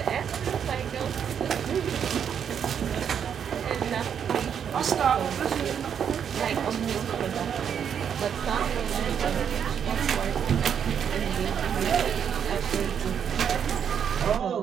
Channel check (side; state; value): left; quieter; 8.0 dB